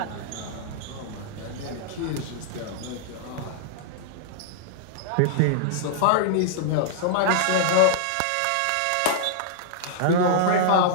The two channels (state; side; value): different; both; correlation -0.01